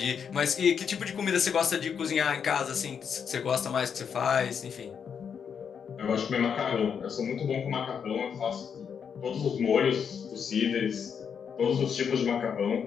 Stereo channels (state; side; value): quieter; right; 7.1 dB